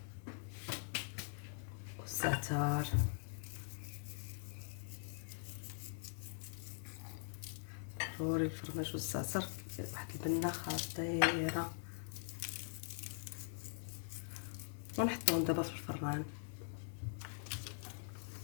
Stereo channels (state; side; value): silent; right; digital silence